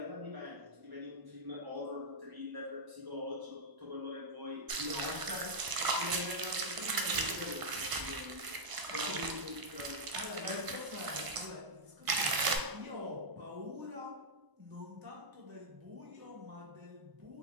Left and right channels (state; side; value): late; left; 1.0 ms